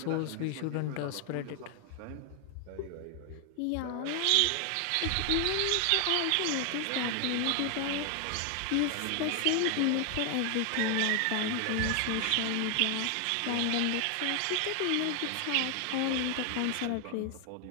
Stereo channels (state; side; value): different; both; correlation 0.00